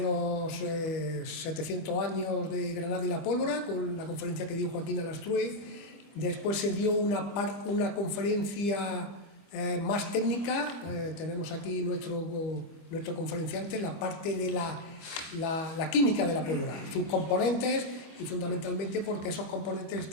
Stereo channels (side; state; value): right; late; 25 ms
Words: 700 años de Granada y la Pólvora, con la conferencia que dio Joaquín Alastrue. Después se dio una conferencia más técnica. Tenemos aquí nuestro conferenciante, la parte de la química de la pólvora, sus componentes, y fundamentalmente porque esos componentes